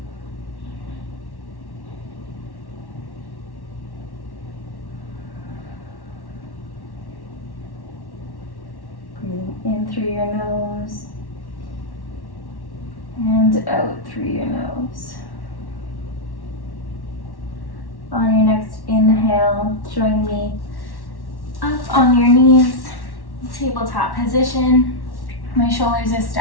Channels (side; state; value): right; late; 1.1 ms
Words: Breathing in through your nose and out through your nose. On your next inhale, join me up on your knees, tabletop position. My shoulders are